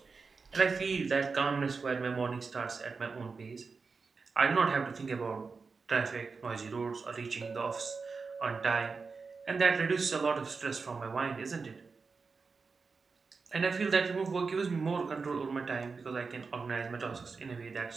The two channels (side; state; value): left; quieter; 4.7 dB